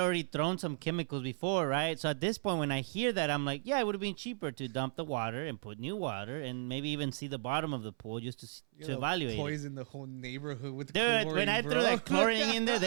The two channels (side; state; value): left; silent; 55 dB below the other